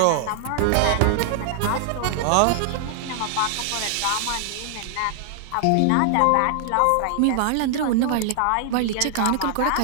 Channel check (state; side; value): different; both; correlation 0.00